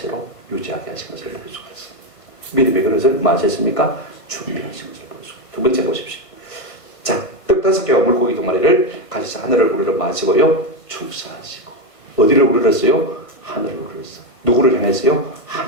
유지하게 하신 것을 볼 수가 있습니다. 믿음의 그릇을 뭐 하셨습니까? 준비하신 것을 볼 수가 있습니다. 두 번째 보십시오. 자, 떡 5개와 물고기 2마리를 가지사 하늘을 우러러 마시고요, 축사하시고. 어디를 우러렀어요? 하늘을 우러렀어요. 누구를 향했어요?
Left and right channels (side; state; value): right; late; 1.5 ms